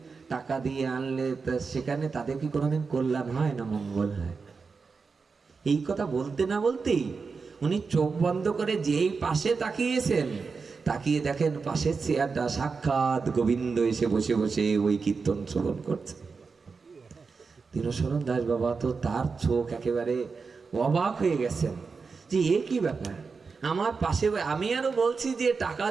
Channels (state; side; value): quieter; left; 4.9 dB